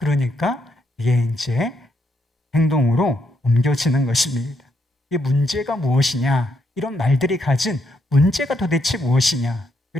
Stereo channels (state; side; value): normal; both; correlation 0.77